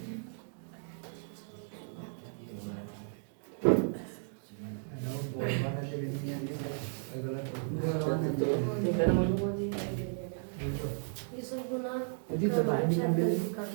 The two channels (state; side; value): silent; left; digital silence